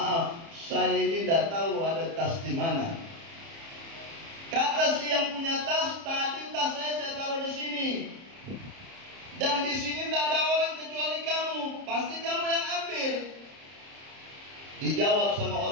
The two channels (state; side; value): late; left; 30 ms